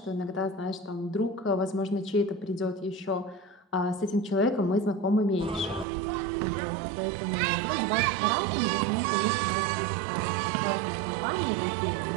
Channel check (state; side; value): drops out; left; at 5.9 s